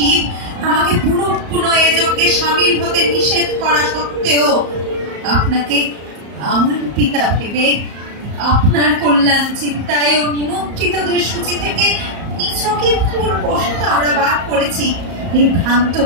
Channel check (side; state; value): left; late; 34 ms